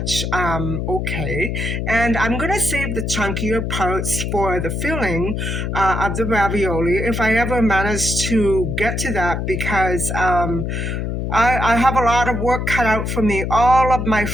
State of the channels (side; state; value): left; noise; hum, 2 dB below the sound